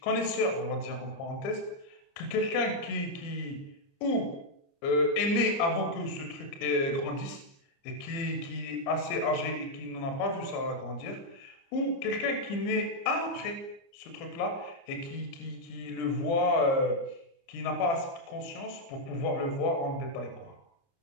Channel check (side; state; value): right; late; 30 ms